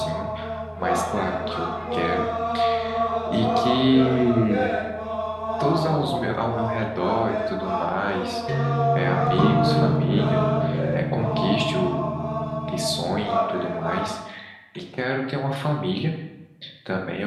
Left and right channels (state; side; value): identical; both; correlation 1.00